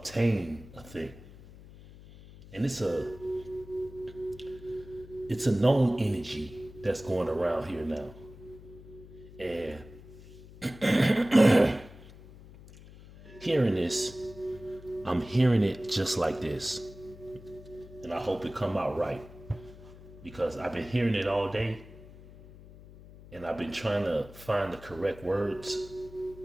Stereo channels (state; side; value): noise; left; hum, 19 dB below the sound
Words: a thing. And it's a known energy that's going around here now. And hearing this, I'm hearing it just like this. And I hope it come out right. Because I've been hearing it all day. And I've been trying to find the correct words